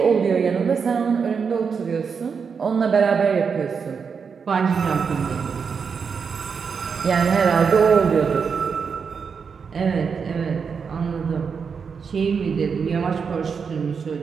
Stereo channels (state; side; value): quieter; left; 6.0 dB